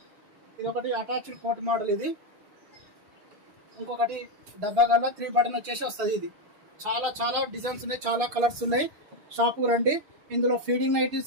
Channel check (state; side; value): late; left; 6.6 ms